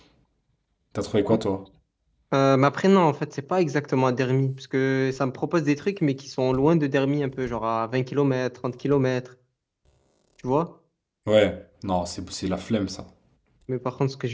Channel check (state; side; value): identical; both; correlation 1.00